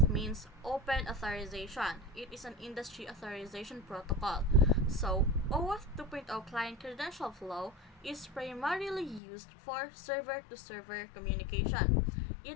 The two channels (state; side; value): drops out; right; at 9.2 s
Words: means Open Authorization. It is an industry authorization protocol. So, OAuth 2.0 client credential flow is primarily used for server-to-server communication.